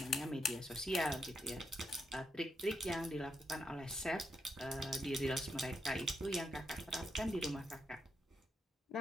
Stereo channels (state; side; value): normal; both; correlation 0.82